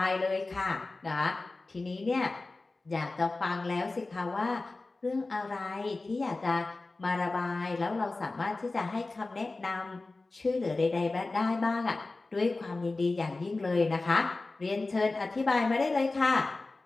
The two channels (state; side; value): quieter; right; 3.3 dB